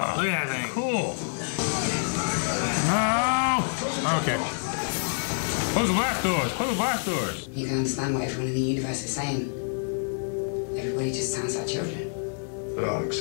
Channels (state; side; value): silent; right; digital silence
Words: Look at that thing. cool. No! Okay. Close the blast doors. Close the blast doors. You can understand what everyone in the universe is saying. Everybody just sounds like children. There are